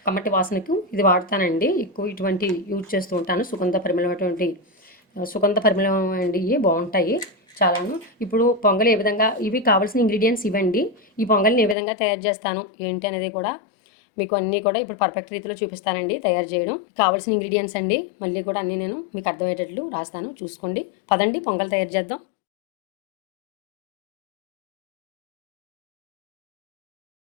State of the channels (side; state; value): right; drops out; at 11.8 s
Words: కమ్మటి వాసనకు ఇది వాడతానండి. ఎక్కువ ఇటువంటి యూజ్ చేస్తూ ఉంటాను. సుగంధ పరిమళం అండి. ఇవి బాగుంటాయి చాలాను. ఇప్పుడు పొంగలి ఏ విధంగా, ఇవి కావాల్సిన ఇంగ్రీడియంట్స్ ఇవ్వండి. ఈ పొంగలిని ఏ విధంగా తయారు చేస్తాను ఏంటి అనేది కూడా మీకు అన్నీ కూడా ఇప్పుడు పర్ఫెక్ట్ రీతిలో చూపిస్తానండి తయారు చేయడం. కావాల్సిన ఇంగ్రీడియంట్స్ అండి మళ్ళీ కూడా అన్నీ నేను మీకు అర్థమయ్యేటట్లు రాస్తాను, చూసుకోండి. పదండి పొంగల్ తయారు చేద్దాం.